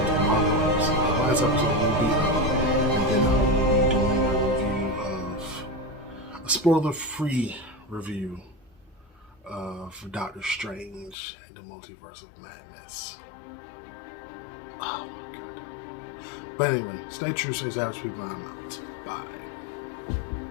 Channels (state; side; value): drops out; right; at 11.2 s